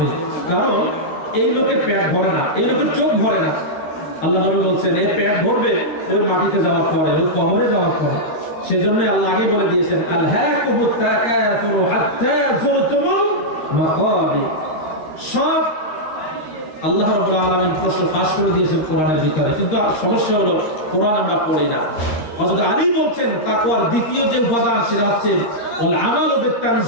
কারণ এই লোকের পেট ভরে না, এই লোকের চোখ ভরে না। আল্লাহ নবী বলছেন এর পেট ভরবে ওই মাটিতে যাওয়ার পরে, ওই কবরে যাওয়ার পরে। সেজন্য আল্লাহ আগে বলে দিয়েছেন আলহাকুমুত তাকাসুর হাত্তা যুরতুমুল মাকাবির। সব আল্লাহ রাব্বুল আলামিন প্রশ্ন ফাঁস করে দিয়েছেন কোরআনের ভিতরে, কিন্তু সমস্যা হলো কোরআন আমরা পড়ি না। হযরত আলী বলছেন তাকওয়ার দ্বিতীয় যে উপাদান সেটা হচ্ছে ওয়াল আমালু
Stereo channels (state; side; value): late; right; 13 ms